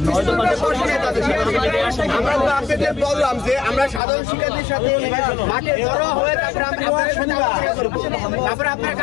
বললাম যে আমরা সাধারণ শিক্ষার্থীর সাথে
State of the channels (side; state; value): right; drops out; at 4.0 s